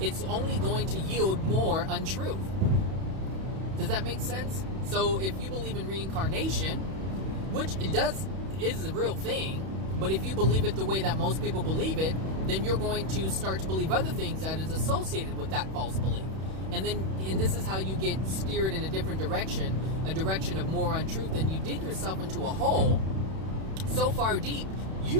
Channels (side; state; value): left; late; 31 ms